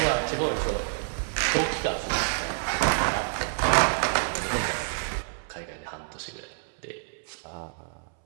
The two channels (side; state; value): left; silent; 59 dB below the other